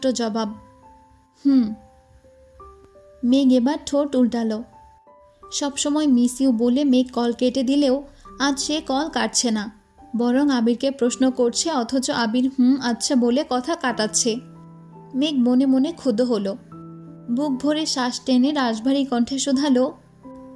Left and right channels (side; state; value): both; identical; correlation 1.00